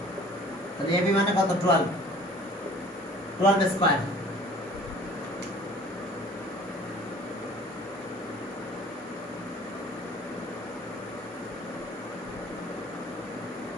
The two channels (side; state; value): both; normal; correlation 0.49